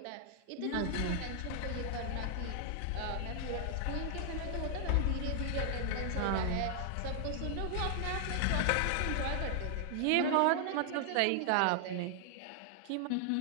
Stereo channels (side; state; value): both; different; correlation 0.00